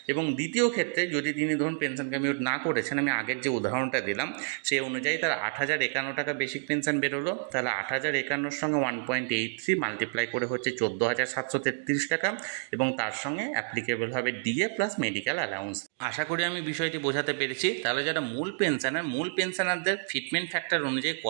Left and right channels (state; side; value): silent; left; digital silence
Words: এবং দ্বিতীয় ক্ষেত্রে যদি তিনি ধরুন পেনশন কমিউট না করেছেন, আমি আগের যে উদাহরণটা দিলাম সেই অনুযায়ী তার 8,051 টাকা বেসিক পেনশন বেরোলো, তাহলে 8,051 সঙ্গে 1.83 মাল্টিপ্লাই করে হচ্ছে 14,733 টাকা এবং তার সঙ্গে অ্যাপ্লিকেবল হবে ডিএ প্লাস মেডিকেল অ্যালাউন্স। আশা করি আমি বিষয়টি বোঝাতে পেরেছি। তাহলে যারা মূল পেনশনারদের ফিটমেন্ট ফ্যাক্টর অনুযায়ী